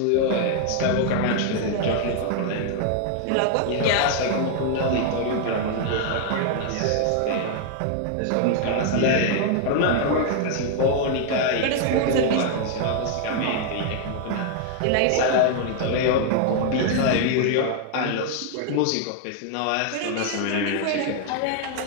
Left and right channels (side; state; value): both; different; correlation 0.00